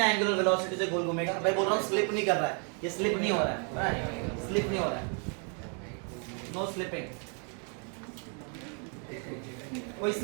एंगुलर वेलोसिटी से गोल घूमेगा? मैं बोल रहा हूँ स्लिप नहीं कर रहा है, ये स्लिप नहीं हो रहा है, स्लिप नहीं हो रहा है, नो स्लिपिंग, कोई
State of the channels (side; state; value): left; quieter; 39.8 dB